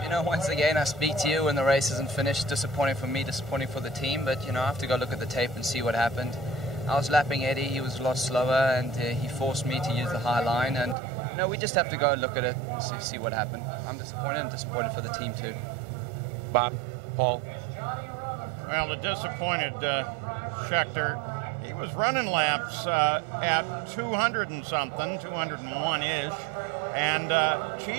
You know, once again, I speak to you when the race isn't finished. Disappointing for me, disappointing for the team, but, you know, I have to go look at the tape and see what happened. I was lapping Eddie, he was a lot slower, and he forced me to use the high line, and, you know, we just have to go look at it and see what happened. I'm disappointed and disappointed for the team, too. Bob, Paul? Well, the disappointed Schechter, he was running laps at 200 and something, 201-ish, and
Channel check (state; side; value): drops out; left; at 11.0 s